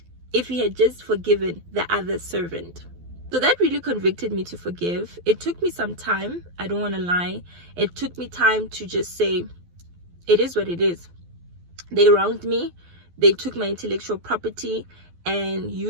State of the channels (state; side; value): late; left; 12 ms